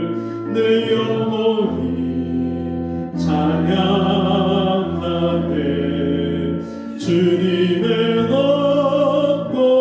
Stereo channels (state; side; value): identical; both; correlation 1.00